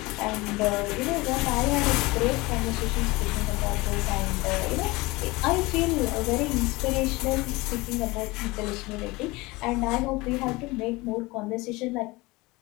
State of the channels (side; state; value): right; quieter; 22.6 dB